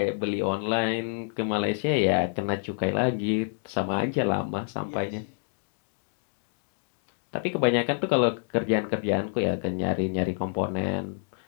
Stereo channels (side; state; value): right; silent; 57 dB below the other